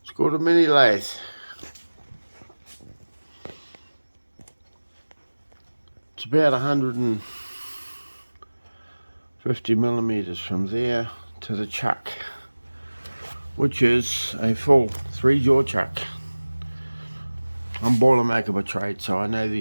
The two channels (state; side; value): inverted; both; correlation -1.00